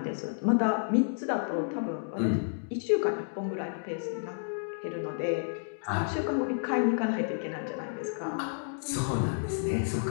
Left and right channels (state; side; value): silent; right; digital silence